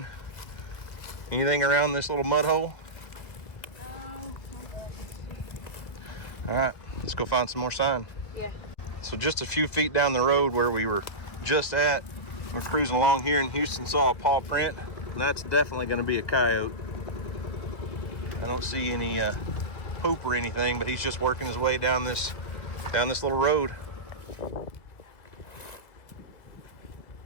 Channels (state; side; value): late; right; 1.7 ms